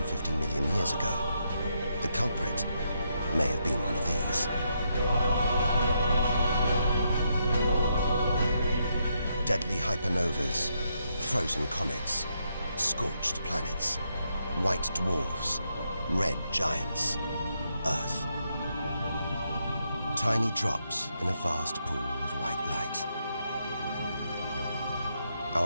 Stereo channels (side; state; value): both; inverted; correlation -0.79